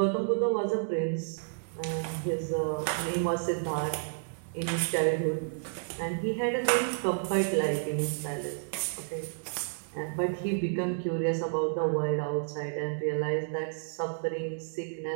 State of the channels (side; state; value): left; silent; digital silence